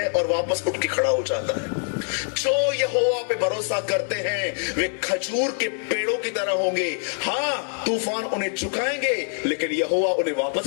और वापस उठ के खड़ा हो जाता है। जो यहोवा पे भरोसा करते हैं वे खजूर के पेड़ों की तरह होंगे। हाँ, तूफान उन्हें झुकाएंगे, लेकिन यहोवा उन्हें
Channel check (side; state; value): right; silent; 58 dB below the other